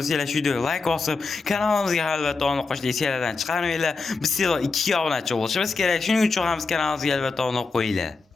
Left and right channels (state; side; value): quieter; right; 4.2 dB